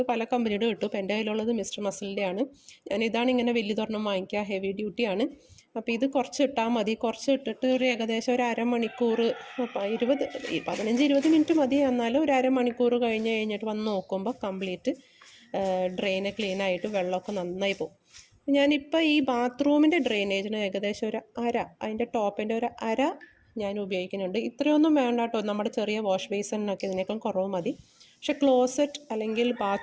പല കമ്പനിയുടെ കിട്ടും. ഇപ്പോൾ എൻ്റെ കയ്യിലുള്ളത് മിസ്റ്റർ മസിലിൻ്റെ ആണ്. ഇതാണ് ഇങ്ങനെ വലിയ തൊരെണ്ണം വാങ്ങിക്കുക, ഹെവി ഡ്യൂട്ടിയാണ്. അപ്പോൾ ഇത് കുറച്ച് ഇട്ടാൽ മതി. കുറച്ച് ഇട്ടിട്ട് ഒരു ഏകദേശം ഒരു അരമണിക്കൂർ, 15-20 മിനിറ്റ് മതി. എന്നാലും ഒരു അരമണിക്കൂർ കഴിഞ്ഞിട്ട് വന്ന് നോക്കുമ്പോൾ കംപ്ലീറ്റ് ഡ്രെയിന് ക്ലീനായിട്ട് വെള്ളമൊക്കെ നന്നായി പോകും. ഞാനിപ്പോൾ ഈ ബാത്റൂമിൻ്റെ ഡ്രെയിനേജിന് ഏകദേശം ഒരു അതിൻ്റെ ടോപ്പിൻ്റെ ഒരു ഞാൻ ഉപയോഗിക്കുന്നുണ്ട്. ഇത്രയൊന്നും വേണ്ട കേട്ടോ, നമ്മുടെ ചെറിയ വാഷ് ബേസിനൊക്കെ ഇതിനേക്കാൾ കുറവ് മതി. പക്ഷെ ക്ലോസറ്റ് അല്ലെങ്കിൽ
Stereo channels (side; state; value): both; identical; correlation 1.00